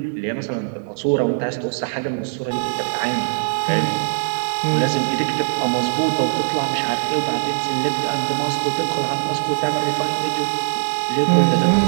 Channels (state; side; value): silent; left; digital silence